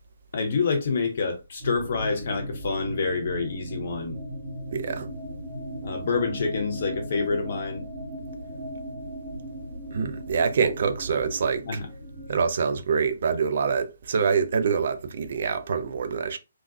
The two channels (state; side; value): inverted; both; correlation -0.71